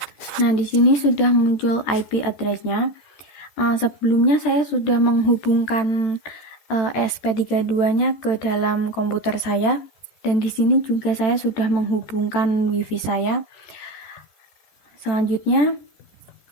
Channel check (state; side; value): late; right; 13 ms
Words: Nah, di sini sudah muncul IP address-nya. Sebelumnya saya sudah menghubungkan ESP32-nya ke dalam komputer saya, dan di sini juga saya sudah menghubungkan WiFi saya. Selanjutnya